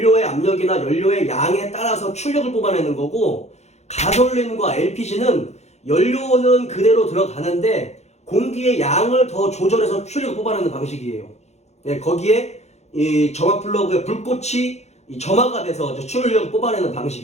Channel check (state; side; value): late; right; 0.32 ms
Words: 압력이나 연료의 양에 따라서 출력을 뽑아내는 거고, 가솔린과 LPG는 연료는 그대로 들어가는데 공기의 양을 더 조절해서 출력을 뽑아내는 방식이에요. 예, 거기에 이 점화 플러그의 불꽃이 이 점화가 돼서 출력을 뽑아내는